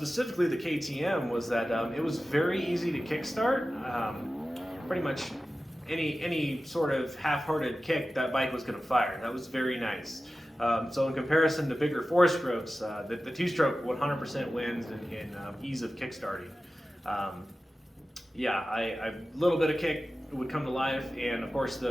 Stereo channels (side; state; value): both; normal; correlation 0.95